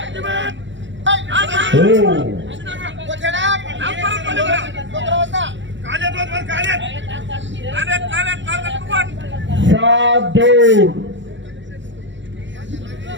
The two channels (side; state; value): left; late; 0.54 ms